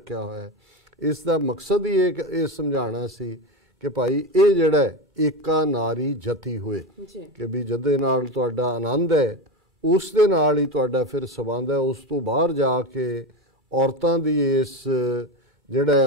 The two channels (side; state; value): both; normal; correlation 0.19